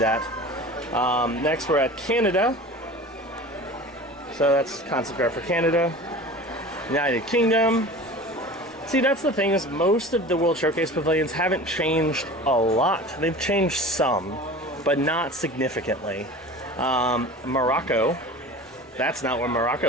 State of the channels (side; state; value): both; normal; correlation 0.37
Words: Next, we're at Canada. So that's concept art for Canada. United Kingdom. See, that's the thing, is most of the World Showcase pavilions haven't changed a lot. They've changed some, but not significantly. Morocco. That's not what